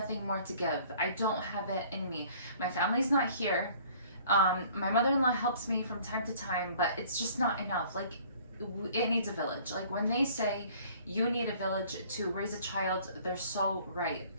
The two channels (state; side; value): inverted; both; correlation -0.54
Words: more to give. I don't have it in me. My family's not here. My mother-in-law helps me from time to time, but it's just not enough. Like, it needs a village. Like, when they say you need a village to raise a child, they're so right.